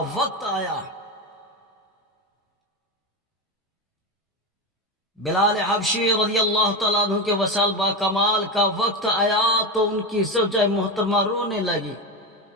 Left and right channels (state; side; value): normal; both; correlation 0.16